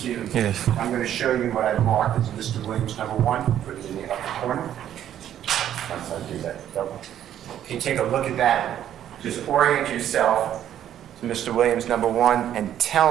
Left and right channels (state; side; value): quieter; left; 10.8 dB